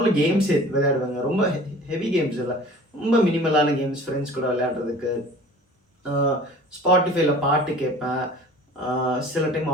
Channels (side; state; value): both; normal; correlation 0.44